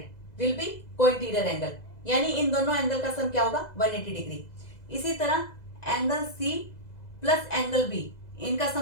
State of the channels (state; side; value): late; right; 2.0 ms